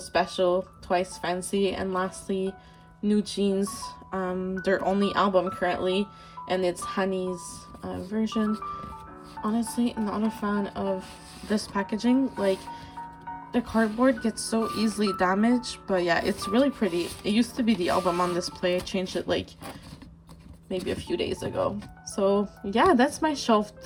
Twice Fancy, and lastly New Jeans, their only album currently, and it's Honey's version. Honestly, not a fan of this packaging. Like, the cardboard gets so easily damaged, but yeah, it's really pretty. It used to be the album on display. I changed it like maybe a few days ago. So yeah, that's my shelf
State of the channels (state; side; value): identical; both; correlation 1.00